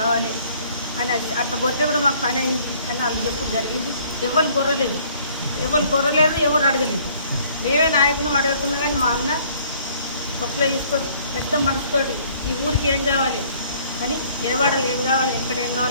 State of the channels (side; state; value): both; inverted; correlation -0.58